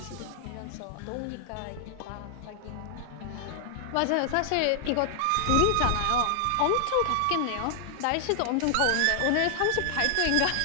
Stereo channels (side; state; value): both; different; correlation 0.00